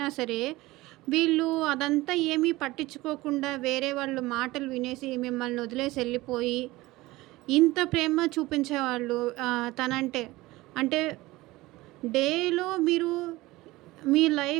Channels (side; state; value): left; quieter; 19.4 dB